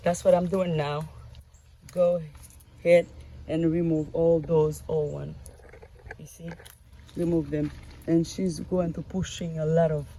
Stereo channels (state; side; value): identical; both; correlation 1.00